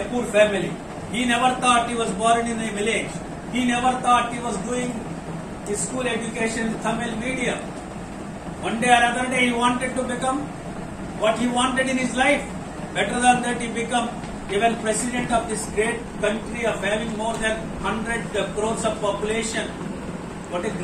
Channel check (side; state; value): both; identical; correlation 1.00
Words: poor family. He never thought he was born in a village. He never thought he was doing his school education in Tamil medium. One day or other day he wanted to become what he wanted in his life. Better than that, he became even president of this great country of having more than 100 crores of population. What a